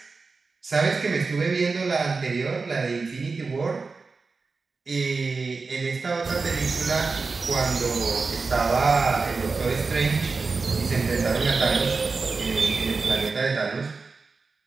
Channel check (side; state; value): left; quieter; 4.3 dB